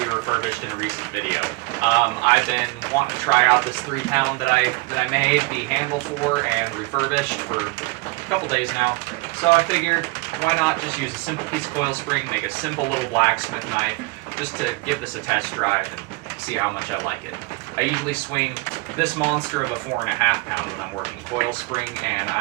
refurbished in a recent video. I've been wanting to try out this 3-pound that I made the handle for and refurbished for a couple days now. So I figured, why not just use a simple piece of coil spring, make a simple little blacksmith knife, just to give this a test drive and see how much I like it. I usually swing this monster of a 4.5-pound when I'm working coil spring, and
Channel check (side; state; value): left; quieter; 24.2 dB